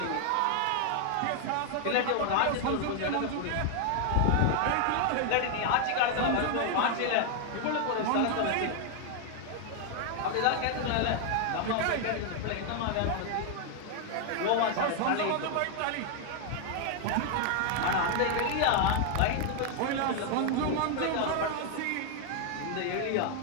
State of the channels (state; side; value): different; both; correlation 0.00